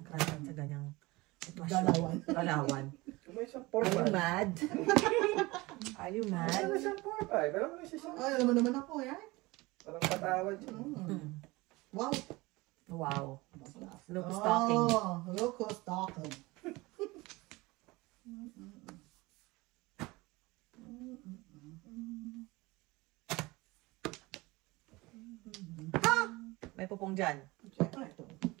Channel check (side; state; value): left; quieter; 22.0 dB